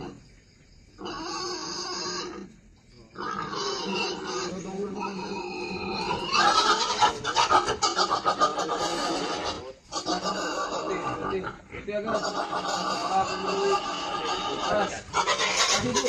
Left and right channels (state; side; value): identical; both; correlation 1.00